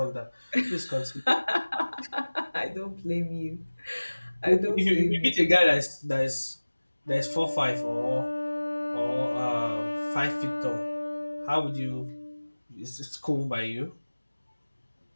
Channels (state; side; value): inverted; both; correlation -1.00